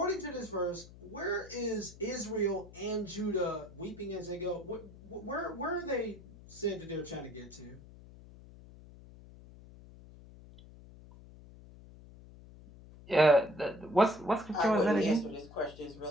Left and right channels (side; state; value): left; noise; hum, 19 dB below the sound